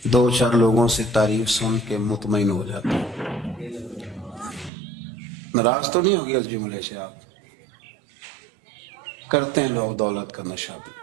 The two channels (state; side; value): drops out; left; at 4.7 s